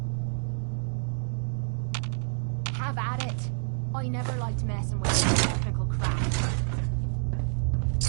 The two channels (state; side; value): silent; left; 59 dB below the other